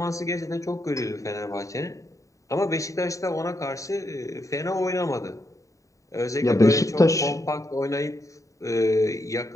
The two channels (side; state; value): right; late; 0.16 ms